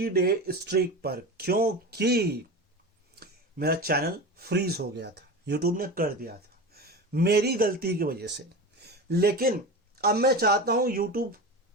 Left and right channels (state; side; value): normal; both; correlation 0.27